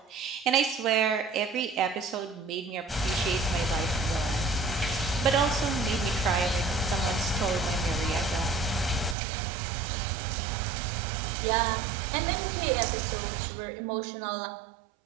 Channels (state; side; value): drops out; left; at 9.2 s